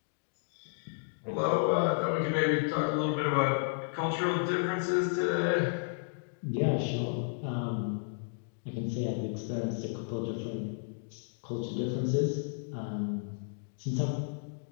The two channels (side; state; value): right; silent; digital silence